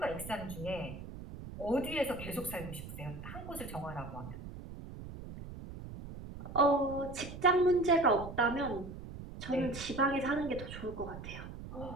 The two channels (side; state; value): right; noise; rumble, 11 dB below the sound